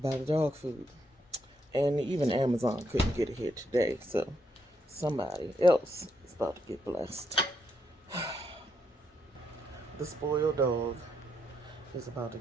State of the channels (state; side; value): normal; both; correlation 0.78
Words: the dog food. And even Amazon couldn't get it here today, so somebody else is about to get blessed. The spoiled dog is about to